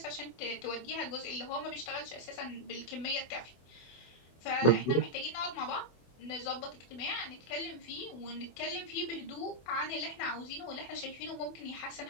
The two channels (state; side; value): late; right; 24 ms